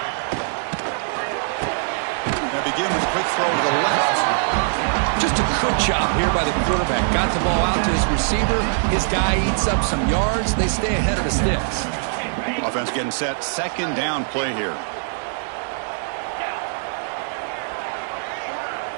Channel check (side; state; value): left; silent; digital silence